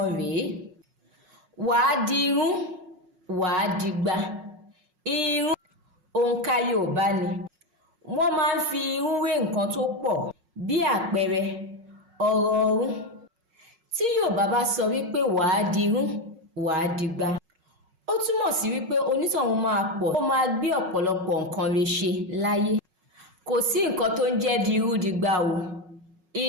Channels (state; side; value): late; left; 5.5 ms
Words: rèé. Wàá dirú, wàá dìgbà. Irú òǹkà Yoòbá ni. Wọ́n máa ń fi irú wé nǹkan tó pọ̀ bí àpẹẹrẹ ọ̀rọ̀ ọ̀run. Tí Yoòbá bá sọ wípé wàá dirú, wàá dìgbà, ó túmọ̀ sí wípé onítọ̀hún máa pọ̀, ó máa gbé ọ̀pọ̀lọpọ̀ nǹkan rẹ̀ ṣe láyé. Kò sí nǹkan tó ń jẹ́ dirú dìgbà o.